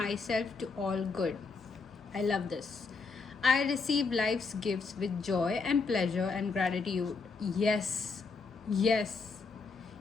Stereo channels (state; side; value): quieter; right; 4.5 dB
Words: to all good. I love this. I receive life's gifts with joy and pleasure and gratitude. Yes. Yes.